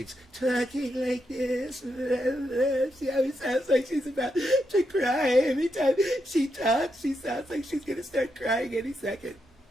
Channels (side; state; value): both; normal; correlation 0.83